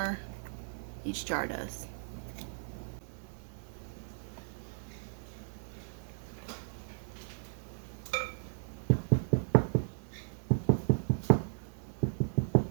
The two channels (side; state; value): left; silent; 54 dB below the other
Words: Each jar does.